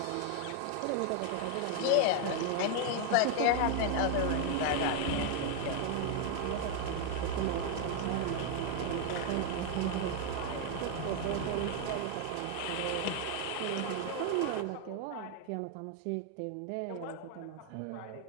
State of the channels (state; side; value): different; both; correlation 0.01